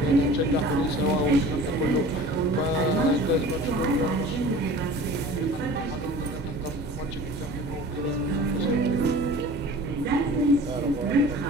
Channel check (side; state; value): both; normal; correlation 0.42